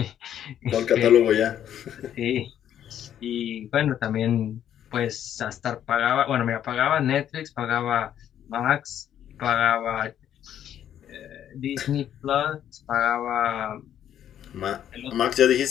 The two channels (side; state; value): right; quieter; 10.3 dB